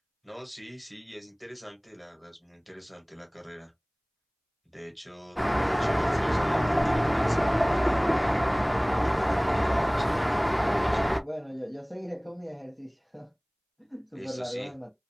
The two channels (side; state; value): both; identical; correlation 1.00